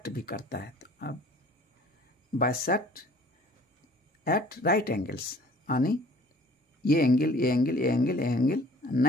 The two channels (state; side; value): normal; both; correlation 0.51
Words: भी करता है, तो अब बाइसेक्ट एट राइट एंगल्स, यानी ये एंगल